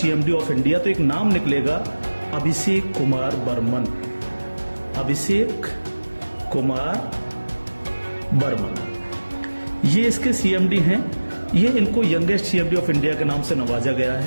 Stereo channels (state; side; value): inverted; both; correlation -1.00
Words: of India, तो एक नाम निकलेगा अभिषेक कुमार बर्मन। अभिषेक कुमार बर्मन ये इसके सीएमडी हैं। ये इनको यंगेस्ट सीएमडी ऑफ इंडिया के नाम से नवाजा गया